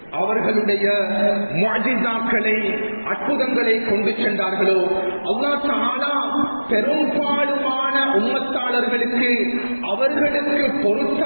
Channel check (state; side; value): inverted; both; correlation -1.00